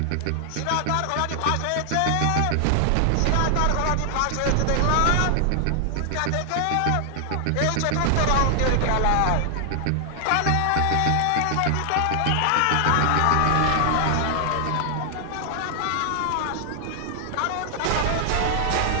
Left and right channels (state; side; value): different; both; correlation 0.00